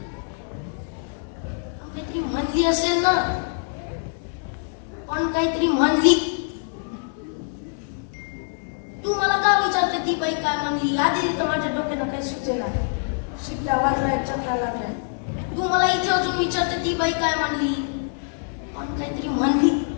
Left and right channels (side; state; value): right; silent; 62 dB below the other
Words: काहीतरी म्हणली असेल ना पण काहीतरी म्हणली. तू मला का विचारते ती बाई काय म्हणली. आधी तर माझ्या डोक्यानं काही सुचेना. शिट्ट्या वाजलाय चक्रा लागलाय. तू मला इथे अजून विचारते ती बाई काय म्हणली पण काहीतरी म्हणली.